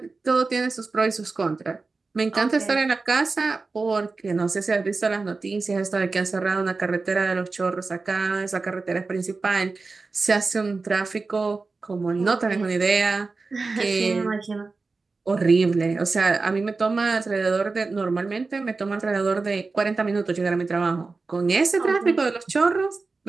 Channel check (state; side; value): quieter; left; 4.0 dB